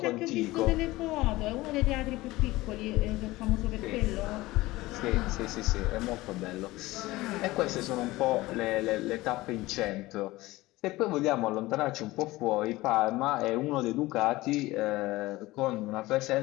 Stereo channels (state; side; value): quieter; right; 19.0 dB